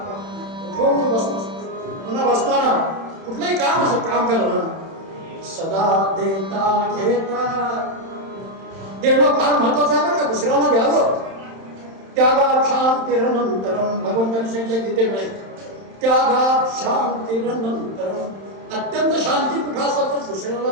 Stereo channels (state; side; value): late; left; 31 ms